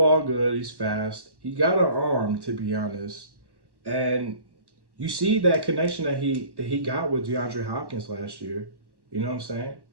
good. He's fast. He got an arm, to be honest. And you see that connection that he got with DeAndre Hopkins last year. You know what I'm saying?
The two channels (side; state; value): left; late; 1.1 ms